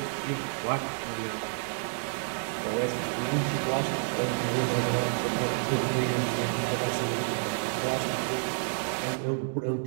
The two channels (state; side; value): silent; left; digital silence